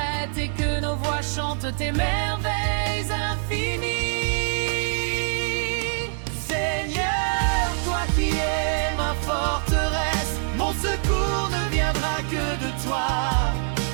et que nos voix chantent tes merveilles infinies. Seigneur, toi qui es ma forteresse, mon secours ne viendra que de toi.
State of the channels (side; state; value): left; silent; digital silence